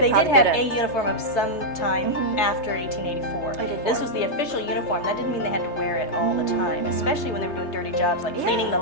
probably did have a didn't. uniform of some time after 1884. 1884. This was the official uniform. That didn't mean they had to wear it all the time, especially when they were doing dirty jobs like cleaning the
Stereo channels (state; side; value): late; right; 3.3 ms